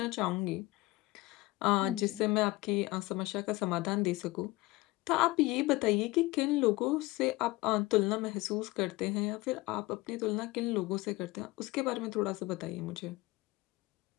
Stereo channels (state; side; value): quieter; right; 20.8 dB